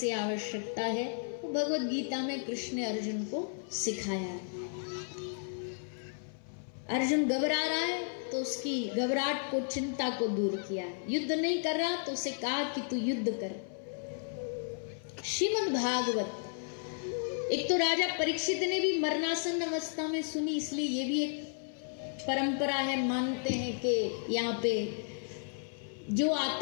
आवश्यकता है, वो भगवत गीता में कृष्ण ने अर्जुन को सिखाया है। अर्जुन घबरा रहा है तो उसकी घबराहट को, चिंता को दूर किया। युद्ध नहीं कर रहा तो उसे कहा कि तू युद्ध कर। श्रीमद् भागवत एक तो राजा परीक्षित ने भी मरणासन अवस्था में सुनी, इसलिए ये भी एक परंपरा है, मानते हैं कि यहाँ पे जो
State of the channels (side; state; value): right; silent; 55 dB below the other